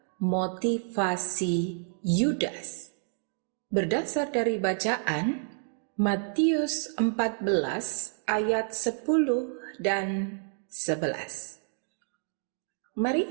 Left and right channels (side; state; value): left; silent; 58 dB below the other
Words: motivasi Yudas. Berdasar dari bacaan Matius 14 ayat 10 dan 11. Mari